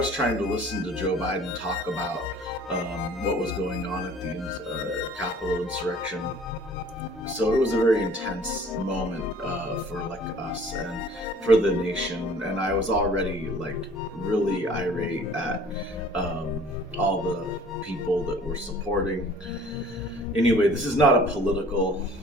trying to listen to Joe Biden talk about what was going on at the Capitol insurrection. So it was a very intense moment for like us and for the nation, and I was already like really irate at all the people that were supporting. Anyway, this is not a political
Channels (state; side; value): normal; both; correlation 0.51